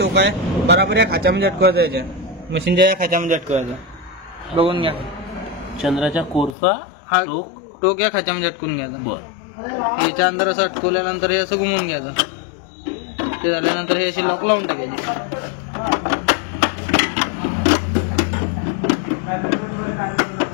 आहे बराबर या खाच्यामध्ये अटकवायचं, याच्या मशीनच्या या खाच्यामध्ये अटकवायचं. बघून घ्या. चंद्राच्या कोरचा हा टोक या खाच्यामध्ये अटकून घ्यायचा. बर. याच्या अंदर असं अटकवल्यानंतर हे असं घुमवून घ्यायचं. ते झाल्यानंतर हे असे लॉक लावून टाकायचे.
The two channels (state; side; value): drops out; right; at 6.6 s